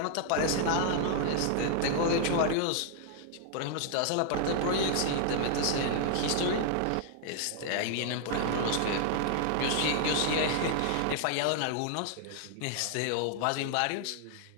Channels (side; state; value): both; different; correlation 0.00